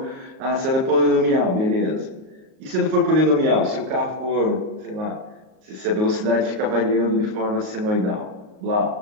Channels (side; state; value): left; late; 38 ms